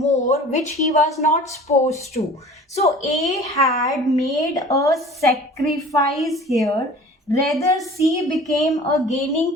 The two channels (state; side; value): normal; both; correlation 0.44